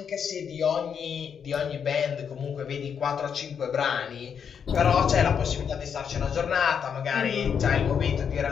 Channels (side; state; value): right; quieter; 7.3 dB